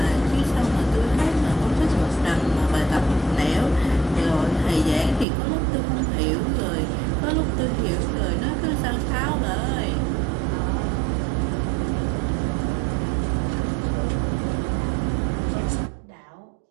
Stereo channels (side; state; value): left; drops out; at 5.2 s